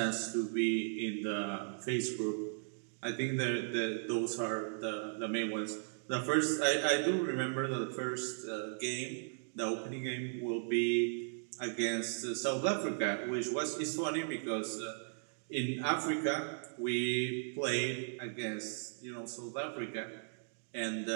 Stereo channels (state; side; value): silent; left; digital silence